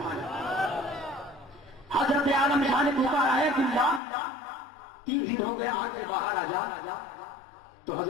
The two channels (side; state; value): right; drops out; at 4.0 s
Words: حضرت عالم شاہ نے پکارا ہے، عبداللہ 3 دن ہو گئے، آگ سے باہر آ جا۔ تو